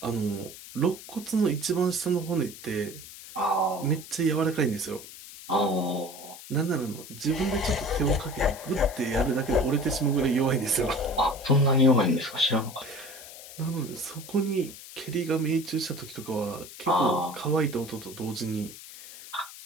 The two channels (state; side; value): noise; left; hiss, 15 dB below the sound